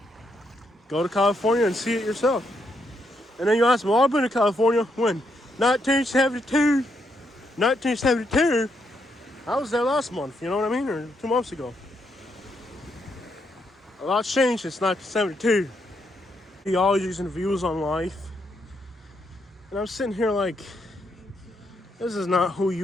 go to California and see it yourself. And then you ask me, well, I've been to California when? 1972. 1972. I was there last month, you know what I mean? Or 2 months ago. A lot's changed since 1972. Ideologies and views on life. And I'm sitting here like, this is not who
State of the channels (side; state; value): both; normal; correlation 0.78